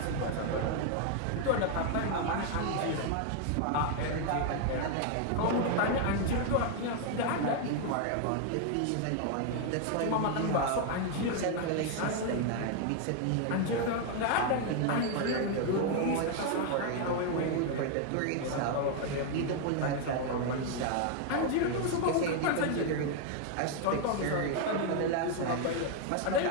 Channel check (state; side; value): different; both; correlation 0.00